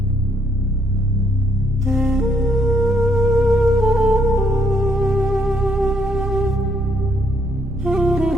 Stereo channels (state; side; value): noise; right; rumble, 11 dB below the sound